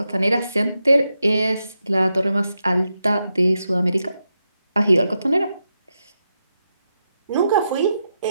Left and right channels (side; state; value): both; inverted; correlation -0.86